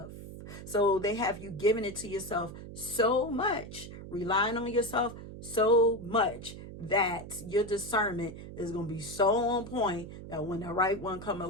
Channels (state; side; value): noise; right; hum, 12 dB below the sound